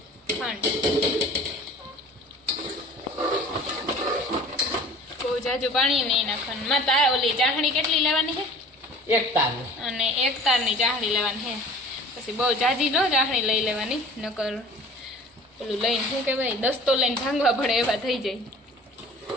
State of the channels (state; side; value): normal; both; correlation 0.45